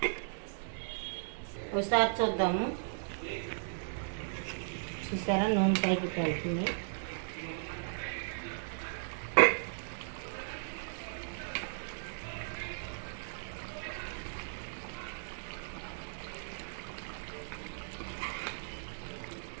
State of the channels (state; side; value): silent; left; digital silence